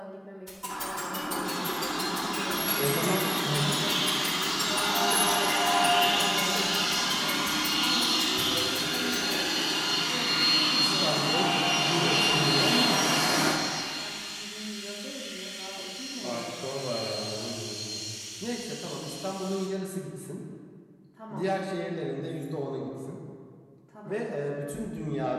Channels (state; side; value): identical; both; correlation 1.00